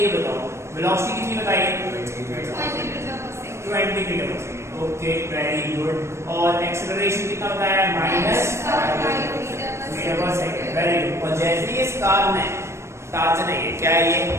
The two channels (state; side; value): late; left; 0.13 ms